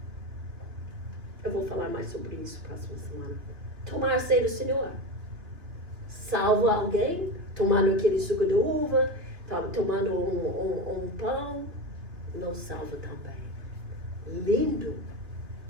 Eu vou falar mais sobre isso próxima semana. Tomar a ceia do Senhor salva alguém? Tomando aquele suco de uva, tomando um pão, não salva também. Lindo,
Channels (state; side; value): late; left; 2.7 ms